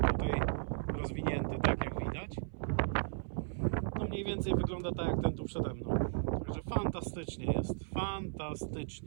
tutaj rozwinięty, tak jak widać. No mniej więcej wygląda tak jak ten tu przede mną. Także fantastycznie jest,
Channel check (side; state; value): left; silent; 54 dB below the other